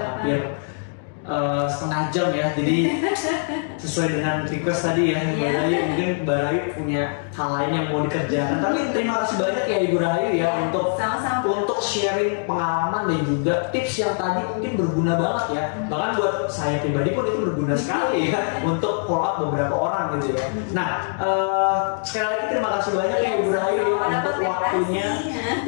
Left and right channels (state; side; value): silent; right; digital silence